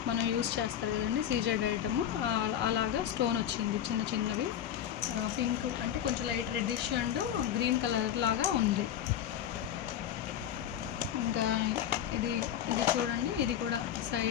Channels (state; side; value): quieter; right; 10.1 dB